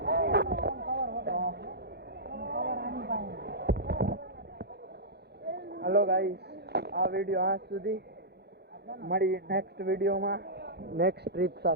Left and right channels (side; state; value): left; late; 0.48 ms